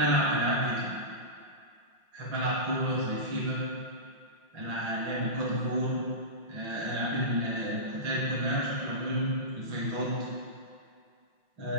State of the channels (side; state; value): left; late; 5.6 ms